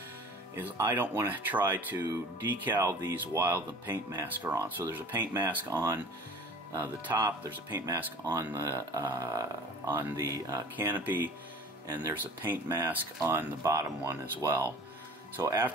is I don't want to try to decal these while the paint masks are on. So there's a paint mask on the top, there's a paint mask on the canopy, and there's a paint mask on the bottom one as well. So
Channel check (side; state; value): both; normal; correlation 0.43